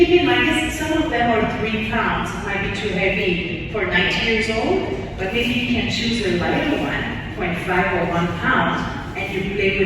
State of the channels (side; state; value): both; identical; correlation 1.00